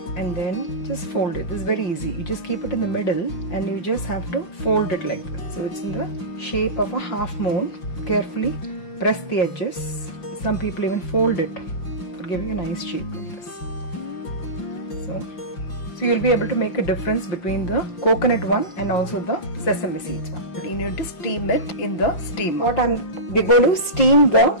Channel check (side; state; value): right; late; 5.5 ms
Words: and then just fold it. This is very easy. You just keep it in the middle and you just have to fold it like this. So it's in the shape of a half moon. Carefully press the edges. Some people even fold it for giving a nice shape like this. So you'll be able to make a difference between the coconut one and also the sesame seeds one. But you need to steam it in the steamer. We're going to steam the